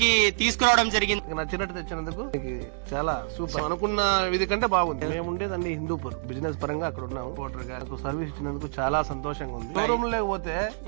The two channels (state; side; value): silent; left; digital silence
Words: తీసుకురావడం జరిగింది. నచ్చినట్టు తెచ్చినందుకు చాలా సూపర్. అనుకున్న విధి కంటే బాగుంది. మేము ఉండేదండి హిందూపూర్, బిజినెస్ పరంగా అక్కడ ఉన్నాము. ఓటర్ గారికి సర్వీస్ ఇచ్చినందుకు చాలా సంతోషంగా ఉంది. షోరూమ్ లేకపోతే